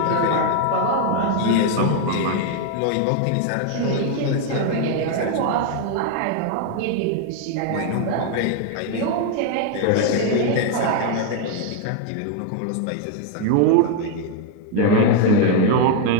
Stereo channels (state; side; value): different; both; correlation 0.01